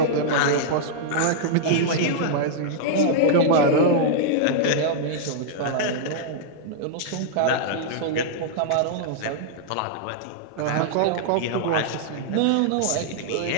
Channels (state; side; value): different; both; correlation -0.02